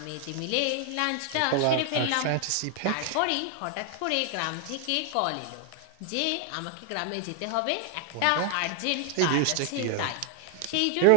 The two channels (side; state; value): both; different; correlation 0.00